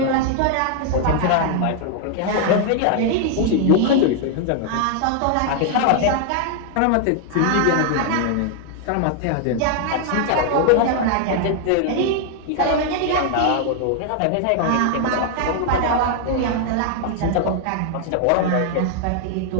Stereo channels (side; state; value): both; different; correlation 0.00